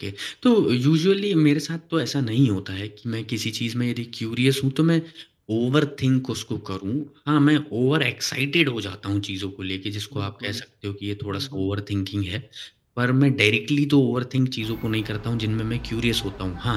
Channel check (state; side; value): identical; both; correlation 1.00